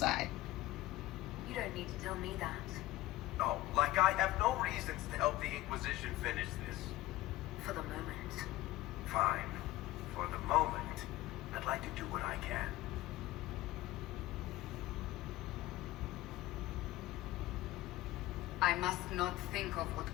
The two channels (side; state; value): right; quieter; 17.0 dB